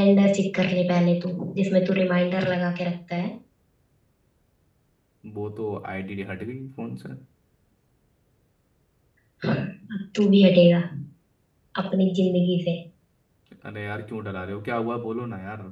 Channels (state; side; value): identical; both; correlation 1.00